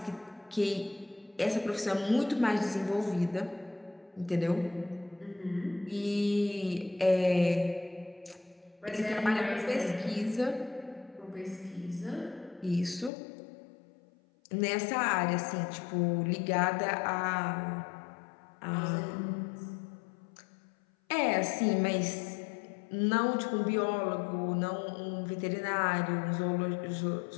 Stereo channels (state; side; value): drops out; right; at 13.1 s